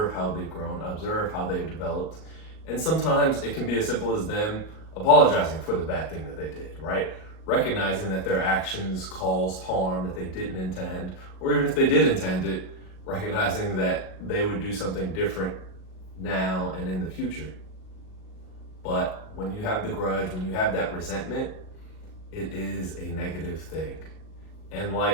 how they've grown, observe how they've developed. And sometimes it can be as simple as them apologizing for the bad thing that they did, right? Recognizing that their actions caused harm that they didn't intend, or even if they did intend it, recognizing that they would do something different now and in the future. But when you have the grudge, when you have that resentment, it is a negative thing. And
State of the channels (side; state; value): right; late; 38 ms